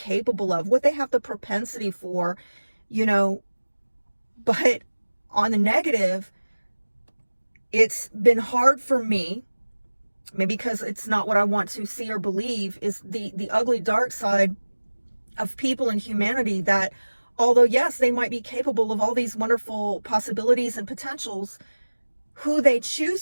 of, what they have the propensity for, But on the negative, it's been hard for me, maybe because it's not what I want to see or believe, is the ugly dark side of people and humanity, that although yes, they might be capable of all these wonderful possibilities and potentials, who they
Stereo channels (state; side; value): inverted; both; correlation -1.00